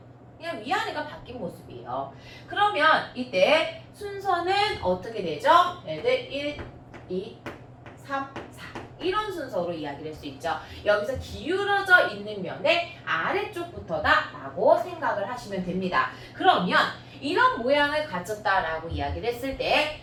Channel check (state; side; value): identical; both; correlation 1.00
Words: 그냥 위아래가 바뀐 모습이에요. 그러면 이때 순서는 어떻게 되죠? 얘들 1, 2, 3, 4 이런 순서로 이야기를 할 수 있죠. 여기서 기울어져 있는 면의 아래쪽부터다 라고 생각을 하시면 됩니다. 그러면 이런 모양을 가졌다라고 이야기를 했을